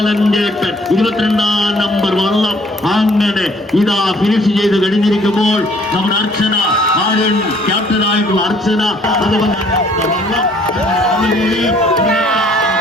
22ാം number വള്ളം അങ്ങനെ ഇതാ ഫിനിഷ് ചെയ്ത് കഴിഞ്ഞിരിക്കുമ്പോൾ നമ്മുടെ അർച്ചന ആര്യൻ ക്യാപ്റ്റനായിട്ടുള്ള അർച്ചന അതുപോലെ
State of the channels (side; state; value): both; normal; correlation 0.59